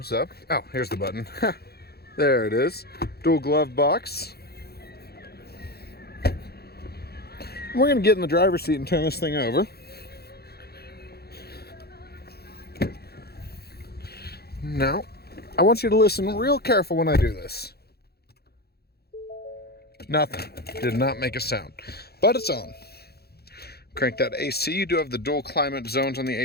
up. Oh, here's the button. There it is. Dual glove box. We're going to get in the driver's seat and turn this thing over. Now, I want you to listen real careful when I do this. Nothing. Did not make a sound. But it's on. Crank that AC. You do have the dual climate zones on the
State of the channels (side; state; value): right; late; 0.46 ms